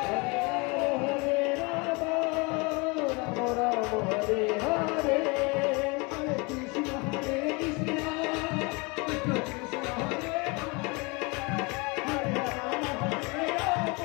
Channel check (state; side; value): quieter; right; 28.5 dB